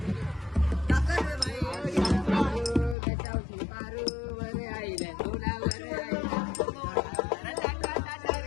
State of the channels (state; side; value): drops out; right; at 3.0 s